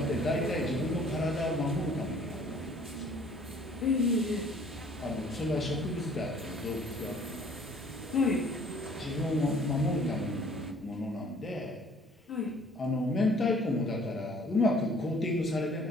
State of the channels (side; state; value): both; normal; correlation 0.56